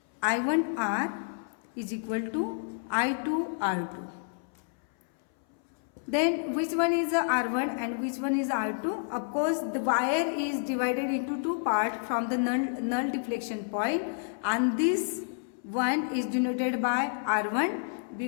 I1R is equal to I2R2. Then which one is the R1 and which one is R2? Of course, the wire is divided into two parts from the null deflection point, and this one is denoted by R1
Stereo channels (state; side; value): silent; right; 58 dB below the other